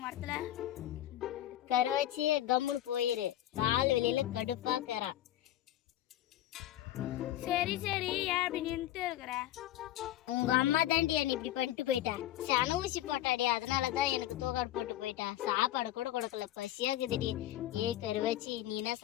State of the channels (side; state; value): right; quieter; 13.6 dB